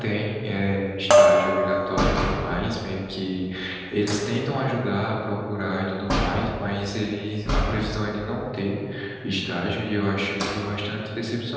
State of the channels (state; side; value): identical; both; correlation 1.00